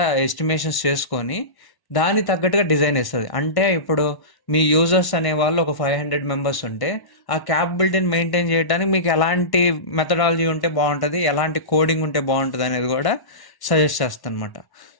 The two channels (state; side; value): late; right; 1.1 ms